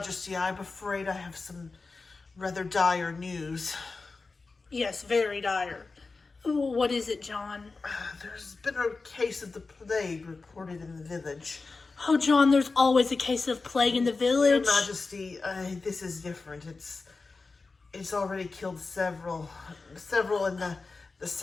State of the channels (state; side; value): quieter; right; 4.0 dB